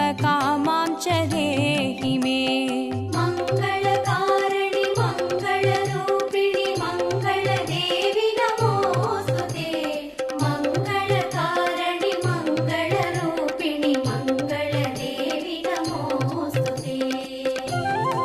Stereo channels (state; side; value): identical; both; correlation 1.00